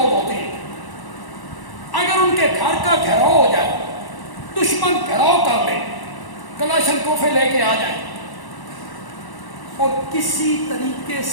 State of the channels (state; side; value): late; right; 1.1 ms